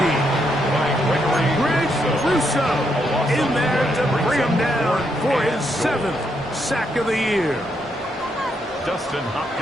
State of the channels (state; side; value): normal; both; correlation 0.78